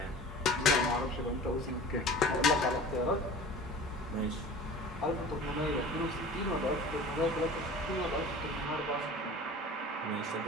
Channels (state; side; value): normal; both; correlation 0.40